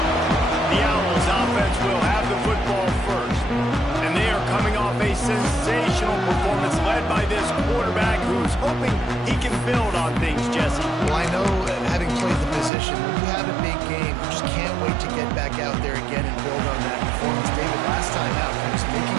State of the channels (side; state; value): left; drops out; at 12.7 s